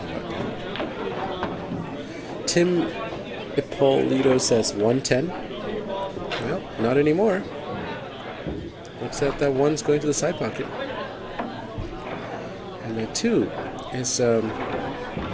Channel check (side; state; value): both; identical; correlation 1.00